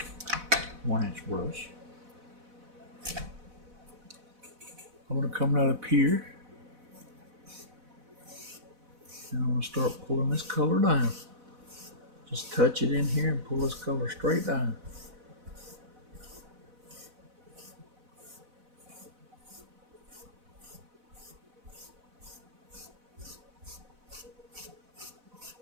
1-inch brush, I'm going to come right up here and I'm going to start pulling this color down. Just touch it in here and pull this color straight down.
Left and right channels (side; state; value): left; late; 4.0 ms